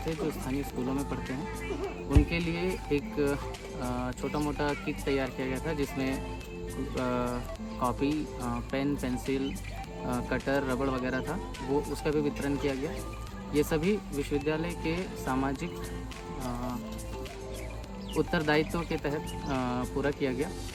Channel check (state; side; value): identical; both; correlation 1.00